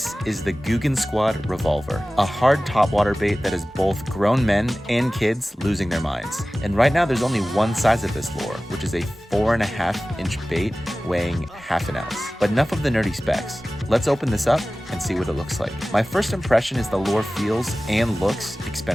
is the Googan Revolver, a hard topwater bait that is both grown men and kids losing their minds. And right now there's only one size of this lure, which is a 4.5-inch bait weighing half an ounce. But enough of the nerdy specs. Let's open this up and see what it looks like. My first impression is the lure feels and looks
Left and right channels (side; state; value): both; normal; correlation 0.97